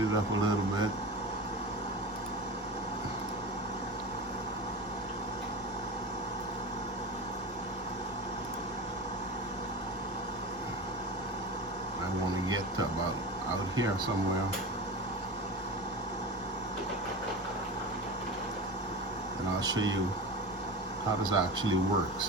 it up a little bit. I want to get to about out here somewhere. And I'll show you how this actually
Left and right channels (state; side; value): normal; both; correlation 0.29